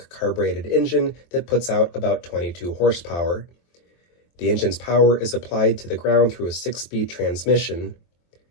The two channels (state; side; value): late; right; 23 ms